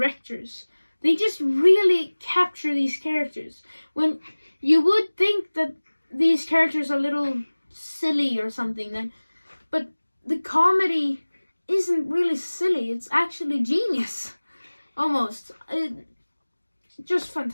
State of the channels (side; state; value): both; inverted; correlation -1.00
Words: They just really capture these characters. When you would think that these characters are a little silly or something, but the comedy isn't really silly. It's actually genius. Almost. Just